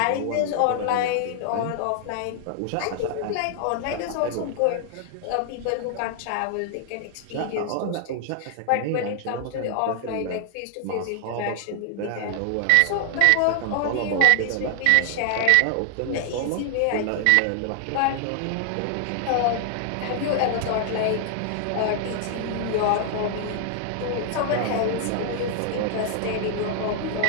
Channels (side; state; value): both; different; correlation 0.00